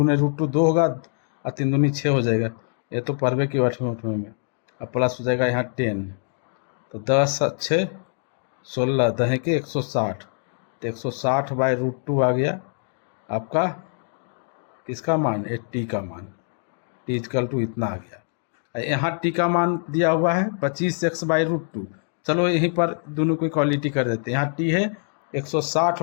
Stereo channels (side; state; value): right; silent; 62 dB below the other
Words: रूट 2 2 होगा और 3 दूनी 6 हो जाएगा। ये तो परवे की 8वें में। अब प्लस हो जाएगा यहाँ 10, तो 10 6 16 दहे के 160, तो 160 बाई रूट 2 आ गया आपका किसका मान, 80 का मान। टी इक्वल टू इतना आ गया। यहाँ टी का मान दिया हुआ है 25x बाई रूट 2। चलो यहीं पर दोनों की क्वालिटी कर देते हैं। यहाँ टी है 160